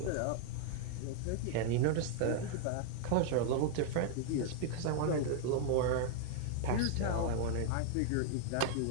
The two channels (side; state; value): both; different; correlation -0.01